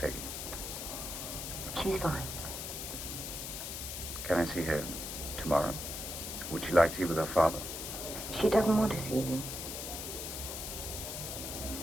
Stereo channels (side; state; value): left; noise; hiss, 6 dB below the sound